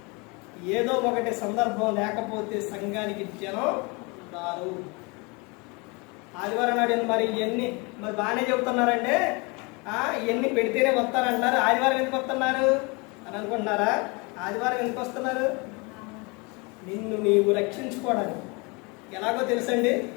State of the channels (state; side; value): quieter; right; 28.9 dB